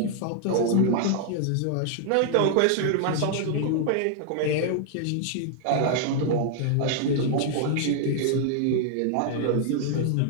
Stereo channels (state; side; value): different; both; correlation 0.00